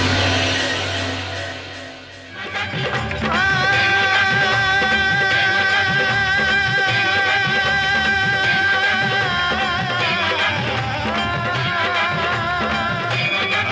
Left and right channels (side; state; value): both; identical; correlation 1.00